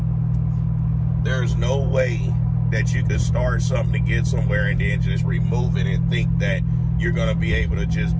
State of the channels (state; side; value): identical; both; correlation 1.00